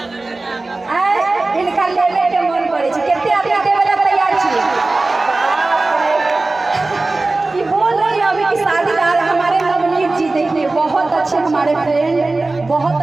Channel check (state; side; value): quieter; left; 3.2 dB